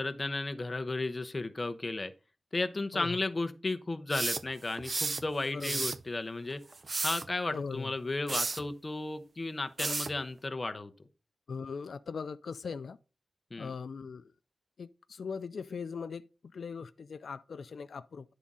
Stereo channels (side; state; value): both; normal; correlation 0.95